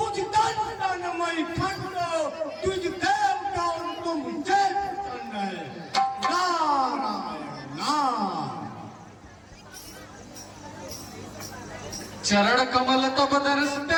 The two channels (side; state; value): both; identical; correlation 1.00